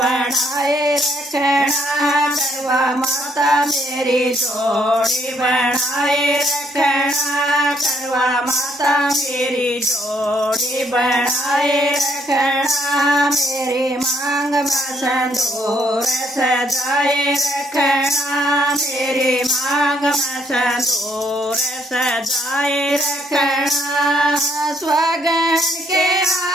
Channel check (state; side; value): normal; both; correlation 0.70